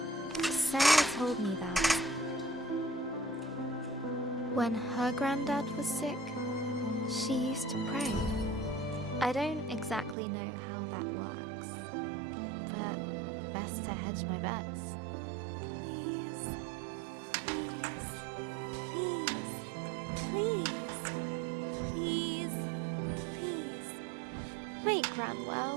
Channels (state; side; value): drops out; left; at 10.2 s